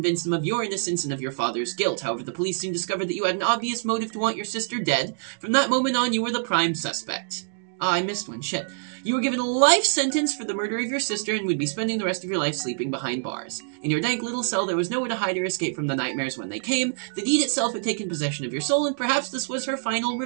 them of your innocence and of your father's guilt. However, the police soon discovered that you had an obvious motive to want your sister dead. From that moment on, you were the prime suspect. Ah, I missed one. Shit. You were given a life sentence for the murder of your sister and would be spending the rest of your life sleeping behind bars. In your dank little cell, there was nowhere to hide or escape from the nightmares when they came. The deed itself had taken possession of your soul, and perhaps this was her final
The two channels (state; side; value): silent; left; digital silence